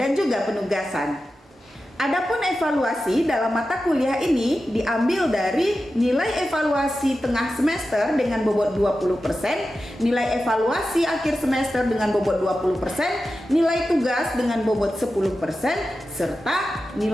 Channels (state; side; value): normal; both; correlation 0.92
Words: juga penugasan. Adapun evaluasi dalam mata kuliah ini diambil dari nilai evaluasi tengah semester dengan bobot 20%, nilai evaluasi akhir semester dengan bobot 20%, nilai tugas dengan bobot 10%, serta